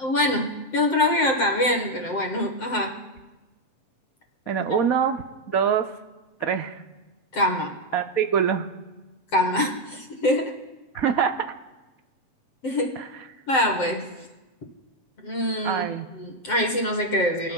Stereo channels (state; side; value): late; right; 7.7 ms